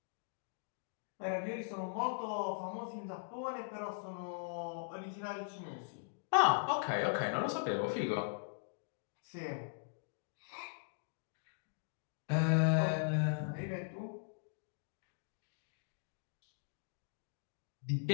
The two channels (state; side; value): silent; right; digital silence